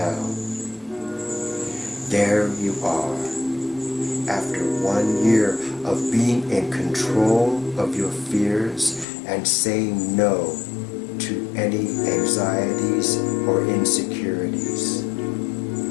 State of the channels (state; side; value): drops out; right; at 9.1 s